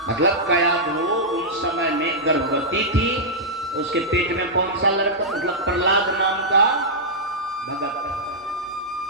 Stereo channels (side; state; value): both; normal; correlation -0.09